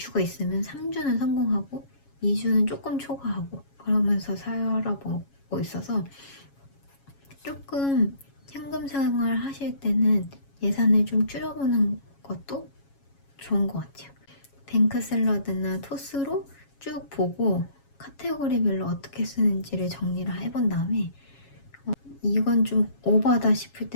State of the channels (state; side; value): late; right; 7.2 ms